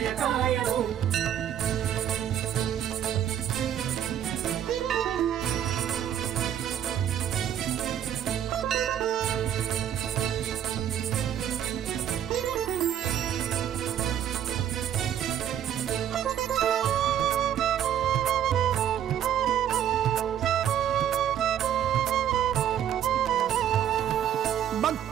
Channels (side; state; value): left; quieter; 10.2 dB